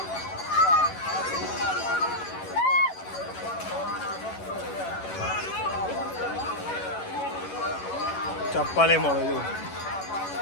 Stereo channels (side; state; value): right; late; 11 ms